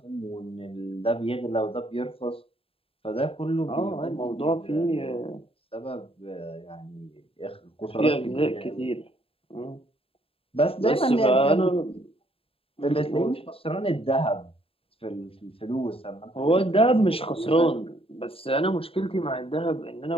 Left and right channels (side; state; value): right; late; 0.27 ms